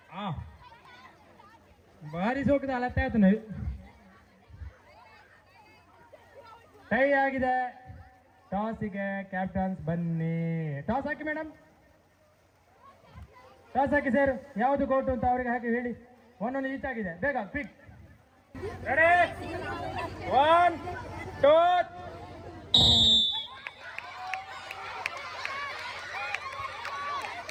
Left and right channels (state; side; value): identical; both; correlation 1.00